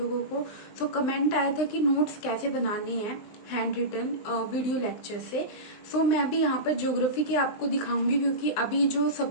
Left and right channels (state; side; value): late; right; 19 ms